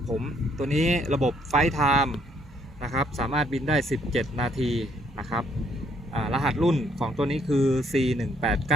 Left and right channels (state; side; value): normal; both; correlation 0.68